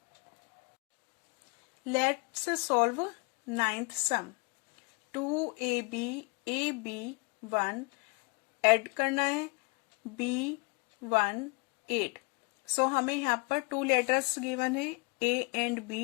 Let's solve 9th sum. 2ab ab 1 add करना है b1 8। सो हमें यहाँ पर 2 letters given है a and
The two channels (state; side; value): quieter; right; 31.7 dB